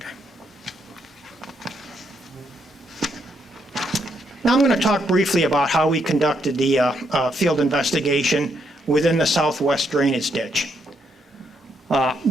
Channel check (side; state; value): both; normal; correlation 0.76